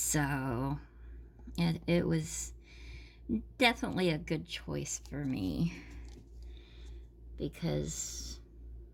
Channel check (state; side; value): identical; both; correlation 1.00